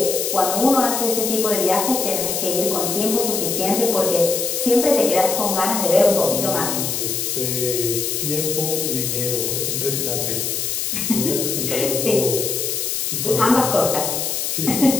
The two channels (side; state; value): left; noise; hiss, 1 dB below the sound